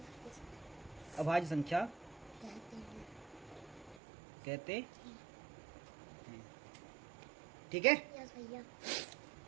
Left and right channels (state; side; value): drops out; left; at 4.0 s